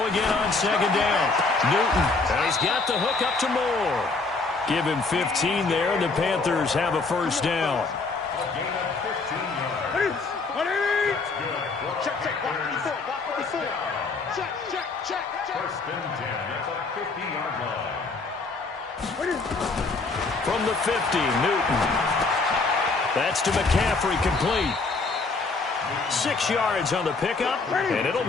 again on second down. Newton, and he's got the hook up to Moore. Give him 15 there, and the Panthers have a first down. From the 50, Newton. That's to McCaffrey, complete. 6 yards on the pickup, and it'll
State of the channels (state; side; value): quieter; right; 3.9 dB